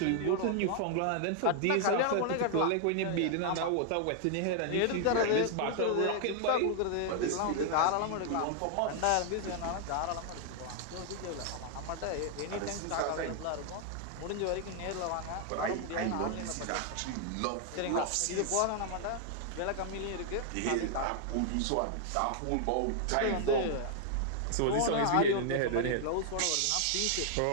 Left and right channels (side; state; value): both; different; correlation 0.00